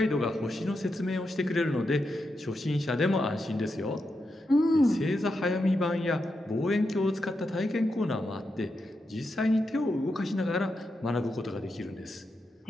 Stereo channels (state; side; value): normal; both; correlation 0.86